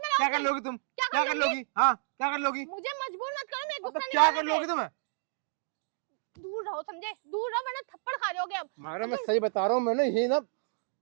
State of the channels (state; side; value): silent; left; digital silence